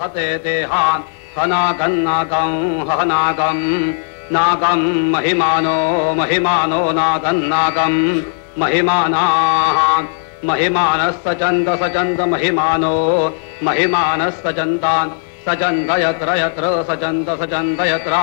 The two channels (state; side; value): silent; right; digital silence